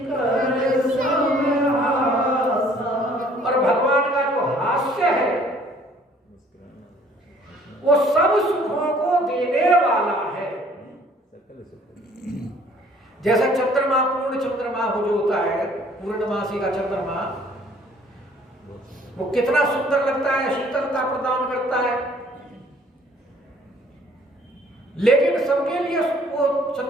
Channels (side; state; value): both; normal; correlation 0.58